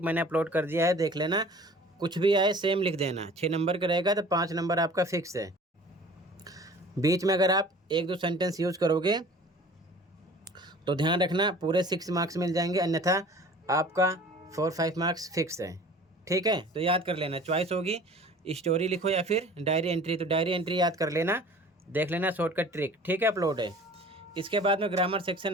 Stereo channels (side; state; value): both; normal; correlation 0.46